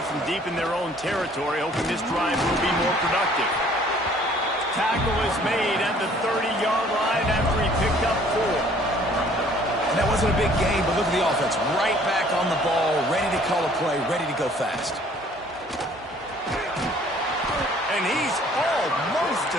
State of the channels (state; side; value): normal; both; correlation 0.57